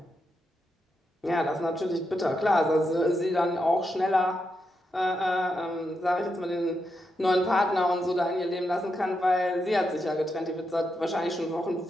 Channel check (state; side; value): normal; both; correlation 0.84